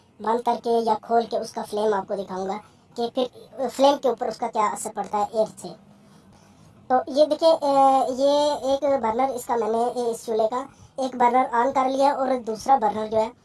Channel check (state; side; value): identical; both; correlation 1.00